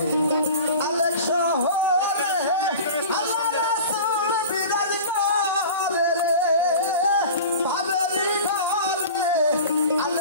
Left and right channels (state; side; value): inverted; both; correlation -0.36